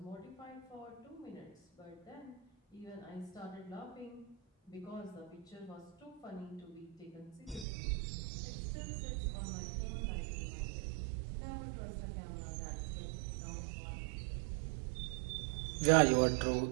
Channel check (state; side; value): drops out; left; at 7.7 s